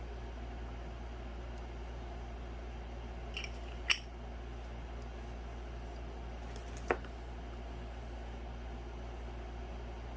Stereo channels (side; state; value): both; identical; correlation 1.00